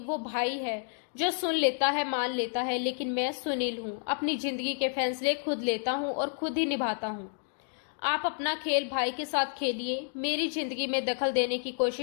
भाई है जो सुन लेता है, मान लेता है, लेकिन मैं सुनील हूँ, अपनी जिंदगी के फैसले खुद लेता हूँ और खुद ही निभाता हूँ। आप अपना खेल भाई के साथ खेलिए, मेरी जिंदगी में दखल देने की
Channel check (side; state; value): right; silent; digital silence